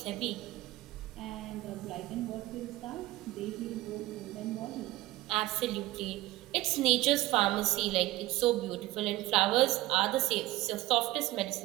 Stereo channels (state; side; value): quieter; left; 17.8 dB